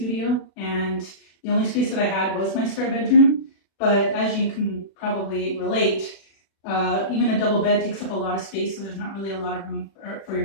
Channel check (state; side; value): late; right; 36 ms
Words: and the only space that I had was my spare bedroom. But as you can probably relate, even a double bed takes up a lot of space, so there's not really a lot of room for your